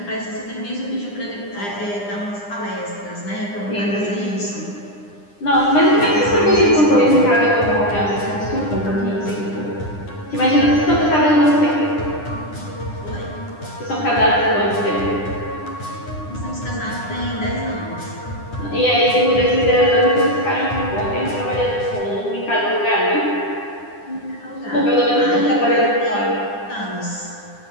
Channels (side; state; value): right; late; 9.9 ms